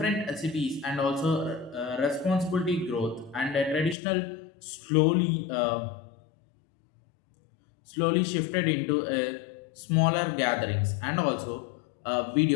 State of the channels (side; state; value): right; drops out; at 4.0 s